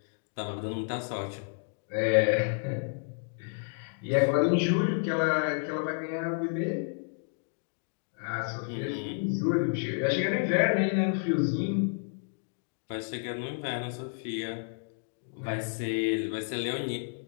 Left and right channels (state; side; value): silent; right; digital silence